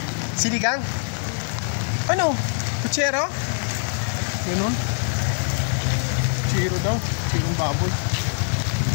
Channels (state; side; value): silent; right; digital silence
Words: Sinigang? Ano? Kutsero? Ganun? Kutsero daw. Kutserong baboy.